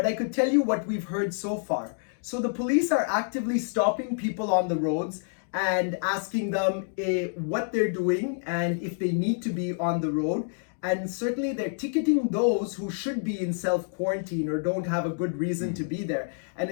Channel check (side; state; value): right; silent; digital silence